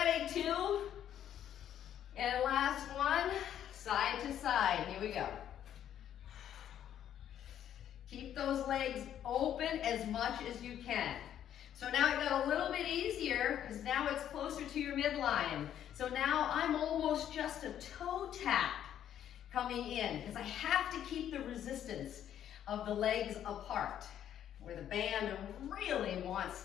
2. And last one, side to side. Here we go. Keep those legs open as much as you can. So now it got a little bit easier because now it's closer to your midline. So now I'm almost just a toe tap coming in because I have to keep the resistance of the legs apart. Where the band really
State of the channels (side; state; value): right; quieter; 10.4 dB